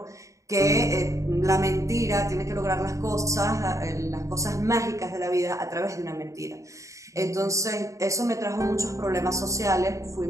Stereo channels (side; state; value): left; late; 0.15 ms